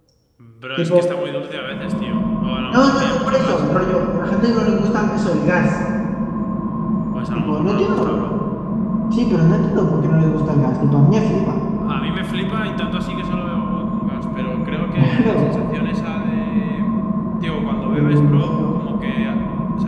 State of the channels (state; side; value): identical; both; correlation 1.00